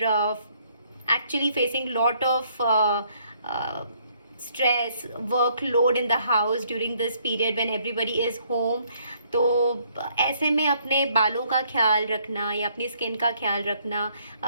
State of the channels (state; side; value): inverted; both; correlation -0.67